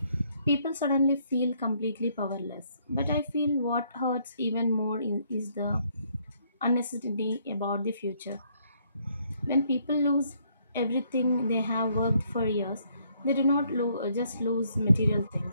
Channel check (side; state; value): both; inverted; correlation -0.69